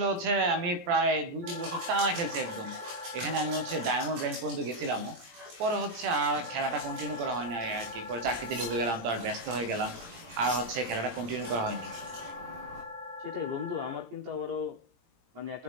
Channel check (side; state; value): left; late; 17 ms